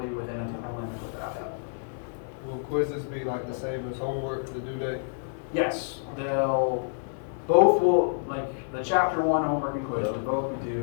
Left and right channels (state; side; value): silent; right; 59 dB below the other